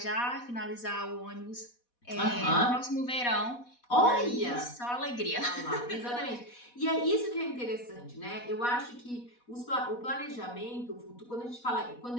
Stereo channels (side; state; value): right; late; 4.1 ms